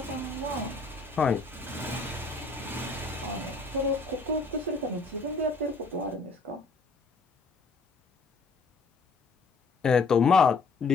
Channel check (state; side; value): quieter; right; 3.8 dB